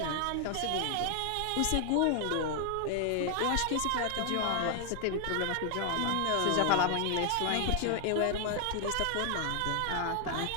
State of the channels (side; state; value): both; different; correlation 0.00